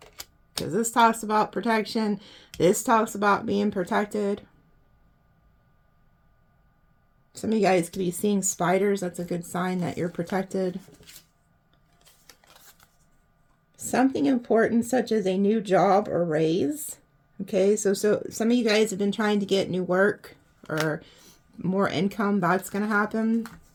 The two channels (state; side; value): identical; both; correlation 1.00